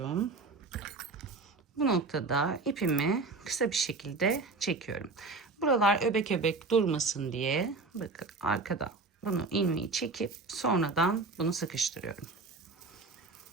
Bu noktada ipimi kısa bir şekilde çekiyorum. Buralar öbek öbek durmasın diye bakın arkadan bunu ilmeği çekip sonradan bunu sıkıştırıyorum.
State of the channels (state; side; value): quieter; left; 3.8 dB